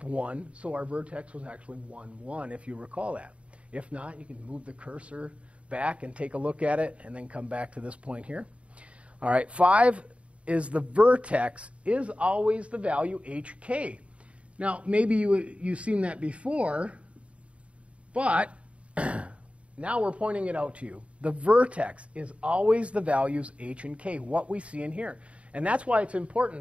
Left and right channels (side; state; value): left; late; 0.063 ms